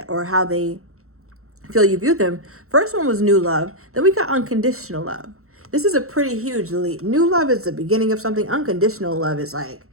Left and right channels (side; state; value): left; late; 0.63 ms